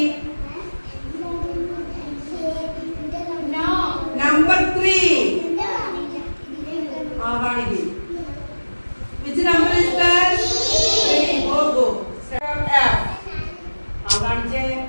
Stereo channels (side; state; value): both; inverted; correlation -1.00